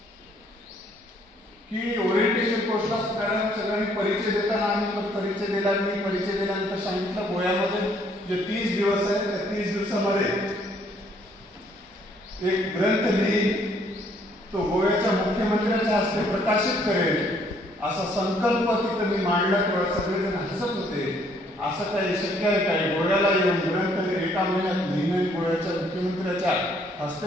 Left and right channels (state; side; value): normal; both; correlation 0.65